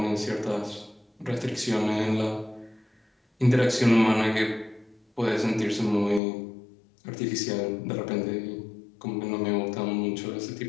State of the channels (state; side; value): drops out; right; at 6.2 s